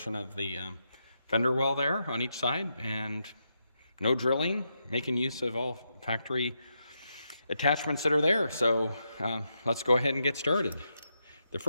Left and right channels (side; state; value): both; inverted; correlation -0.83